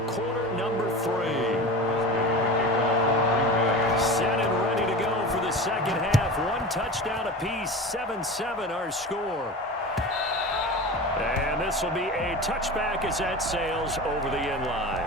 quarter number 3. Set and ready to go for the second half. 1 touchdown apiece. 7-7 our score. And this will be a touchback as that sails over the end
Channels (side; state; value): both; normal; correlation 0.31